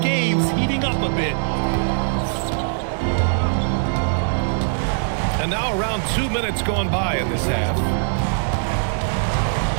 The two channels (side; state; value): left; silent; 65 dB below the other